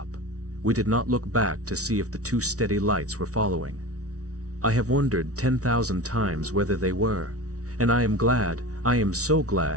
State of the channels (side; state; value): left; late; 0.66 ms